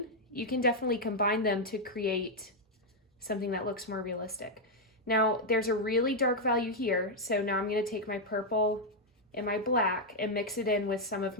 you can definitely combine them to create something that looks more realistic. Now, there's a really dark value here, so now I'm gonna take my purple and my black and mix it in with some of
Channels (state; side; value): normal; both; correlation -0.01